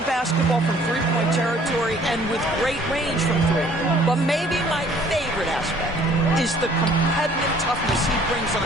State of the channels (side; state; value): both; normal; correlation 0.57